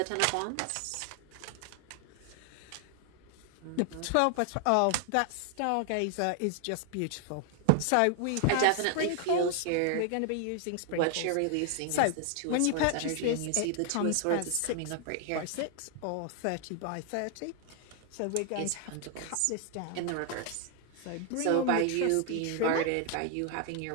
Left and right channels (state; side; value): different; both; correlation 0.00